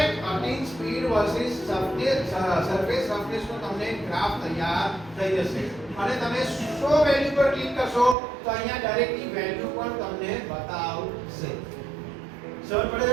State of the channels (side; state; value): left; drops out; at 8.2 s